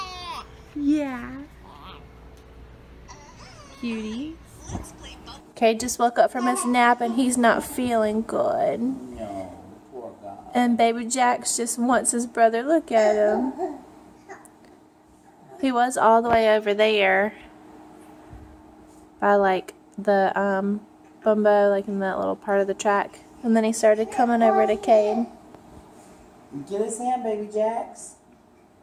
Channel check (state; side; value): identical; both; correlation 1.00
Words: Yeah. Cutie. Caid just woke up from his nap and he's not feeling good. No, poor guy. And baby Jax just wants his brother. Look at him. He was all the way over there by like the bumbo, like in that little part of the track. And then he started coming over to Caid. Get his hand, baby Jax.